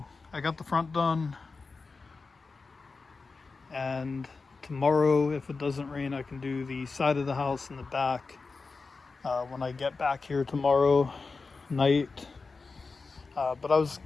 I got the front done. And tomorrow, if it doesn't rain, I can do the side of the house and the back when I get back here tomorrow night. But I was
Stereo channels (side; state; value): right; quieter; 4.2 dB